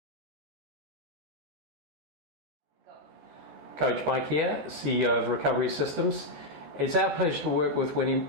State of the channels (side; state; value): left; late; 14 ms